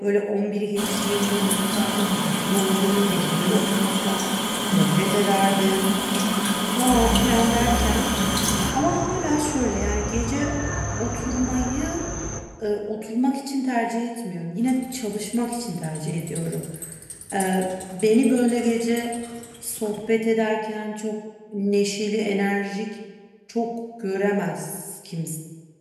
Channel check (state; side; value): identical; both; correlation 1.00